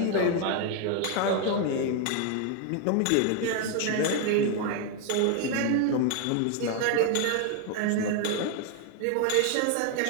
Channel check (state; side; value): different; both; correlation 0.01